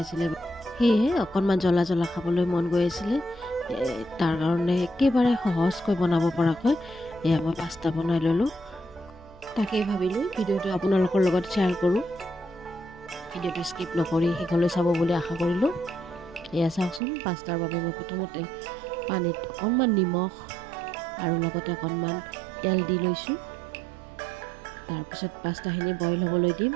আছিলে, সেয়েহে অকণমান জ্বলা খাবলৈ মন গৈ আছিলে। তাৰ কাৰণে একেবাৰে সহজকৈ বনাব পৰাকৈ এয়া মই পাস্তা বনাই ল'লোঁ। তাকেই ভাবিলোঁ ভিডিঅ'টো আপোনালোকৰ লগত শ্বেয়াৰ কৰোঁ। ভিডিঅ'টো স্কিপ নকৰি শেষলৈ চাব বুলি আশা কৰিলোঁ। এয়া চাওকচোন, পাস্তাৰ বাবে মই প্ৰথমতে পানীত অকণমান নিমখ আৰু লগতে অকণমান তেল দি লৈছোঁ। তাৰপিছত পাস্তাখিনি বইল হ'বলৈ দিম।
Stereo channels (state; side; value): drops out; left; at 17.0 s